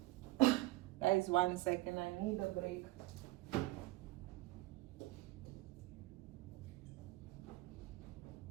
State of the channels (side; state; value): left; quieter; 20.5 dB